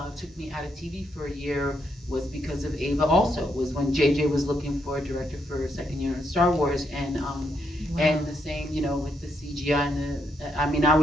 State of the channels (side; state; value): both; normal; correlation 0.78